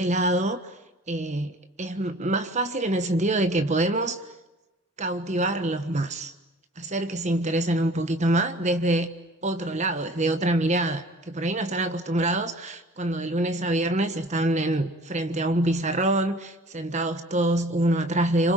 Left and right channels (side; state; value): both; normal; correlation 0.48